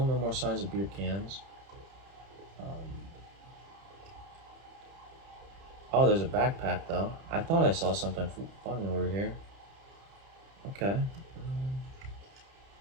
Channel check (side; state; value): left; late; 30 ms